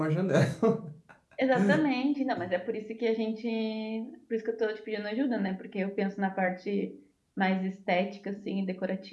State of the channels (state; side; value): identical; both; correlation 1.00